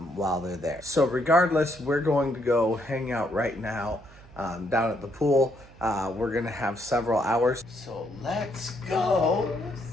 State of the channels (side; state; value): right; noise; hum, 23 dB below the sound